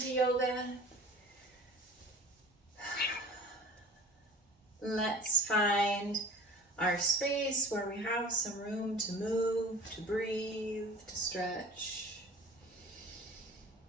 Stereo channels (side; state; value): both; normal; correlation 0.41